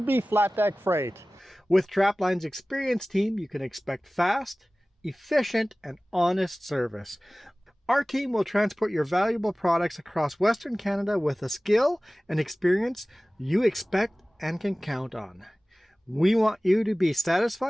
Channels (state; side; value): normal; both; correlation 0.98